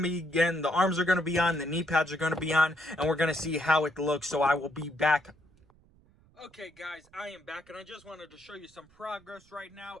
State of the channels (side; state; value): right; noise; rumble, 30 dB below the sound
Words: again, the arms are gonna be on, the knee pads are gonna be on, and we're gonna see how it looks. So I will be back. Okay guys, I am back, and I just wanted to show you some progress right now.